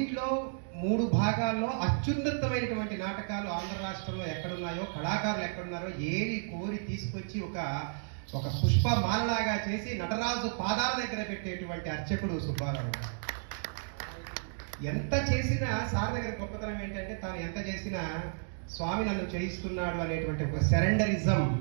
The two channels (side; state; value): left; silent; digital silence